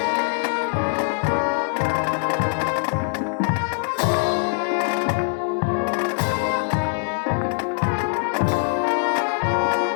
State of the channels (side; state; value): right; silent; digital silence